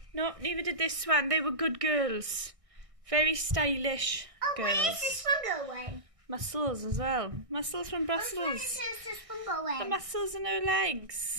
No, neither did this one. They were good girls. Very stylish girls. Where is this one going? Muscles as well. Muscles from Where Brussels. is this one going? The muscles in her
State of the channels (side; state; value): left; late; 1.6 ms